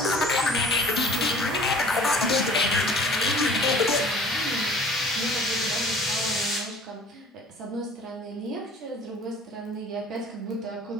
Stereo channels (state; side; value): normal; both; correlation 0.47